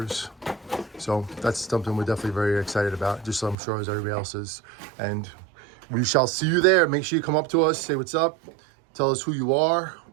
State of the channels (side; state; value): left; drops out; at 3.6 s